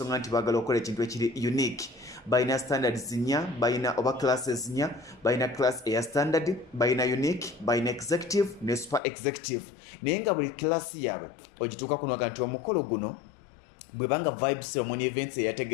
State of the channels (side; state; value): right; drops out; at 9.0 s